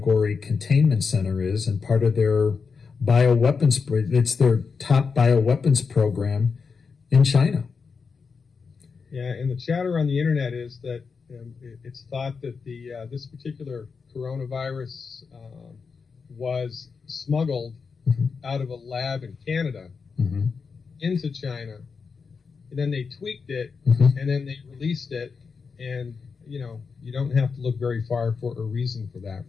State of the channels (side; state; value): right; quieter; 5.3 dB